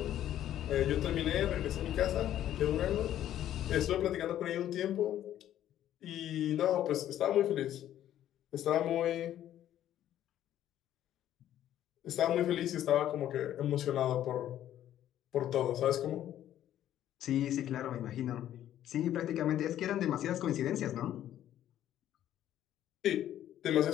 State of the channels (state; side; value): quieter; right; 11.8 dB